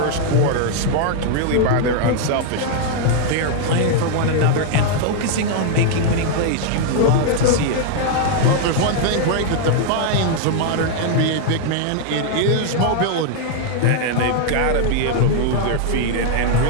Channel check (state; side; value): different; both; correlation 0.00